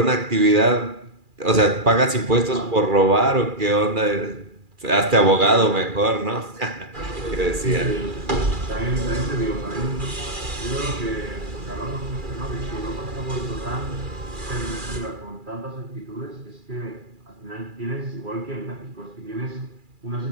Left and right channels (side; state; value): left; late; 2.4 ms